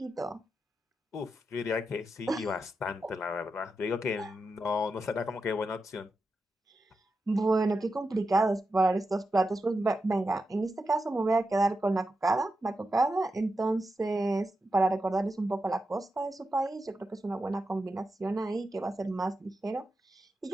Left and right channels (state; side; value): normal; both; correlation 0.89